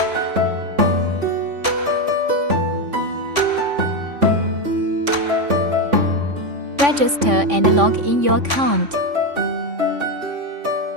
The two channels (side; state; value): left; late; 3.5 ms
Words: Register and log in your account.